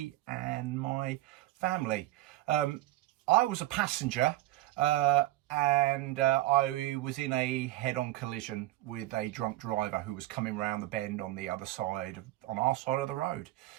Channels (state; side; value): quieter; left; 16.4 dB